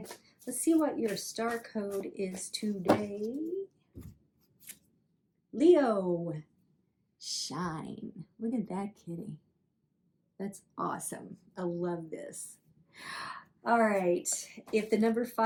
let's see what your star code is today. Leo, shine. Look at that kitty. That's awesome. I love this. All right, if the number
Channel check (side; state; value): both; identical; correlation 1.00